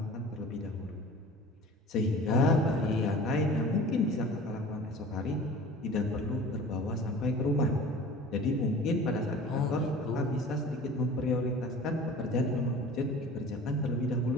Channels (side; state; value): both; normal; correlation 0.42